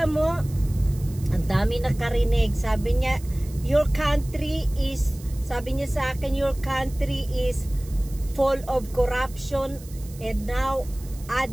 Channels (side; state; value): right; noise; hiss, 20 dB below the sound